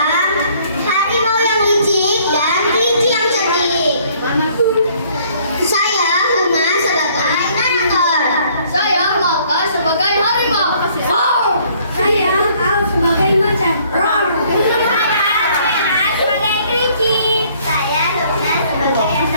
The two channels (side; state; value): both; inverted; correlation -0.61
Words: harimau yang licik dan kelinci yang cerdik. Saya Huma sebagai narator. Saya Maka sebagai harimau. Saya Al sebagai macan. Saya Kena sebagai kelinci. Saya Luna sebagai